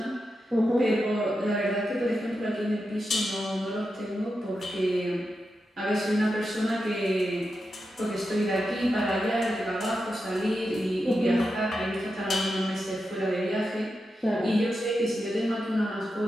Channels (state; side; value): normal; both; correlation 0.88